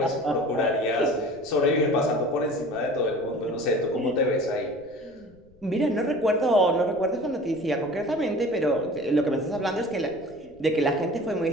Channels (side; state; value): left; noise; rumble, 29 dB below the sound